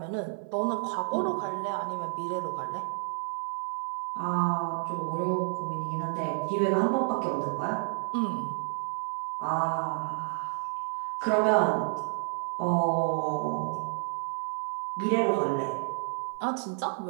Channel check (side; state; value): left; silent; 58 dB below the other